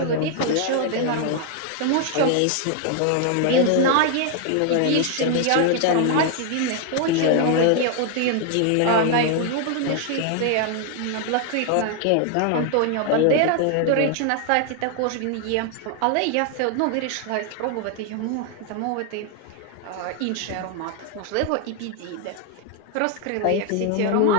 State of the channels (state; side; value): different; both; correlation 0.00